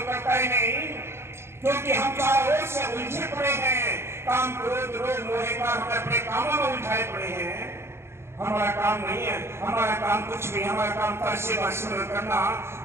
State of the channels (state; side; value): late; left; 0.12 ms